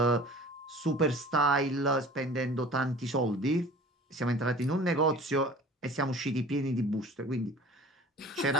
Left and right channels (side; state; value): both; normal; correlation 0.44